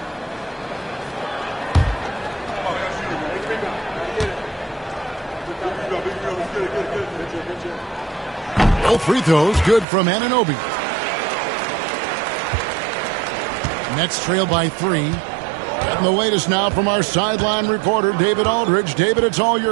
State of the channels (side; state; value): left; drops out; at 9.9 s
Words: Both free throws good from Anunoby. Nets trail by 3. Getting the latest now from our sideline reporter, David Aldridge. David, it's all